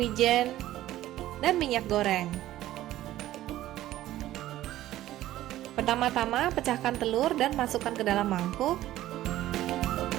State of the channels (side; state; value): left; quieter; 14.4 dB